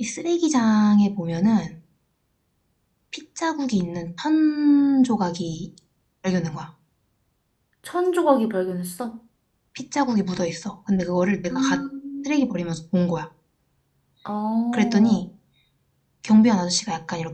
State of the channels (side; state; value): both; identical; correlation 1.00